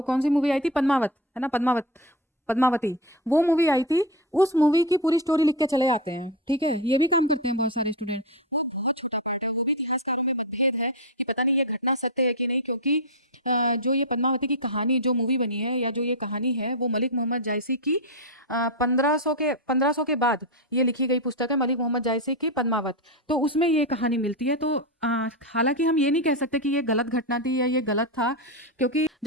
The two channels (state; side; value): normal; both; correlation 0.13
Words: कौन सी मूवी आई थी, पद्मावत, है ना, पद्मावती, वो मूवी आई थी, उस मूवी की पूरी स्टोरी लिख के चले आते हैं। ठीक है, ये भी काम करते हैं बहुत सारे स्टूडेंट। वो बहुत छोटा पार्ट है, वो भी इतिहासकारों में मतभेद है कि पता नहीं ये घटना सत्य है कि नहीं, क्योंकि जो ये पद्मावती की कहानी जो मूवी बनी है या जो ये कहानी है वो मलिक मोहम्मद जायसी की 1500 के बाद ये लिखी गई पुस्तक है, मलिक मोहम्मद जायसी की पद्मावत। तो उसमें ये कहानी मिलती है। तो हालांकि हम ये नहीं कह सकते कि ये गलत घटना थी या ये गलत था, क्योंकि